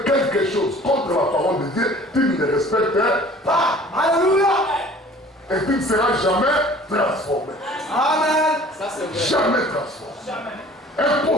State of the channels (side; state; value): both; normal; correlation 0.49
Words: quelque chose contre la parole de Dieu, tu ne le respectes pas. Alléluia. Et tu ne seras jamais transformé. Amen. Jamais transformé.